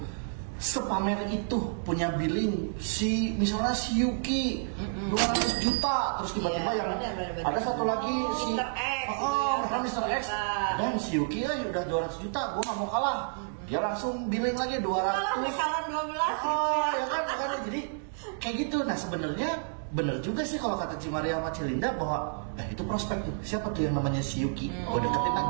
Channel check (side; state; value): left; silent; digital silence